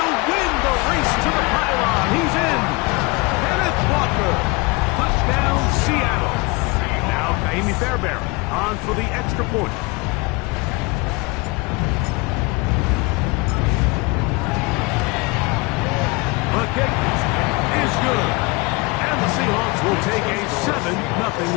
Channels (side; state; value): right; quieter; 26.4 dB